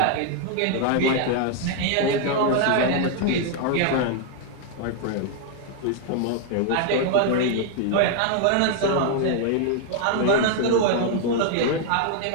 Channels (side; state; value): both; different; correlation 0.00